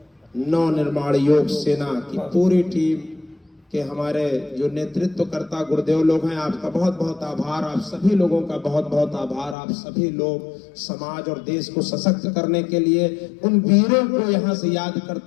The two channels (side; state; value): right; drops out; at 9.6 s